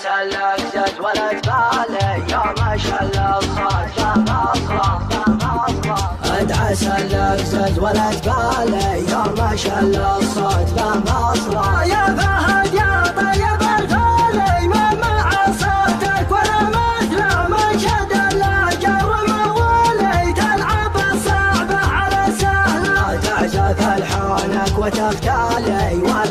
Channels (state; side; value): identical; both; correlation 1.00